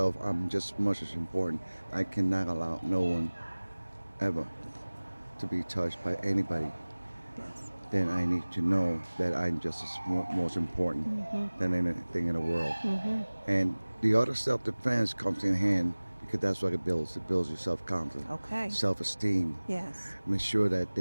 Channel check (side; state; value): both; inverted; correlation -1.00